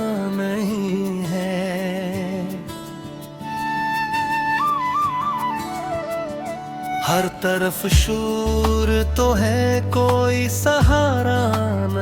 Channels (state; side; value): identical; both; correlation 1.00